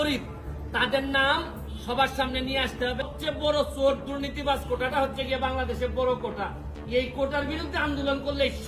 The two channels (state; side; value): identical; both; correlation 1.00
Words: তাদের নাম সবার সামনে নিয়ে আসতে হবে। সবচেয়ে বড় চোর দুর্নীতিবাজ কোটাটা হচ্ছে গিয়ে বাংলাদেশের বড় কোটা। এই কোটার বিরুদ্ধে আন্দোলন করলে